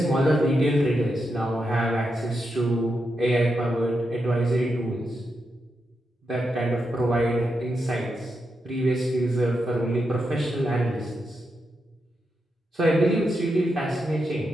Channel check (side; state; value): both; normal; correlation 0.85